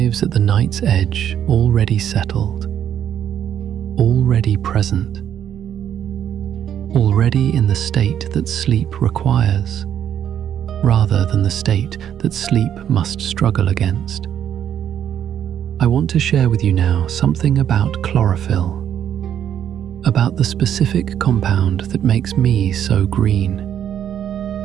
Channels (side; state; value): left; quieter; 9.7 dB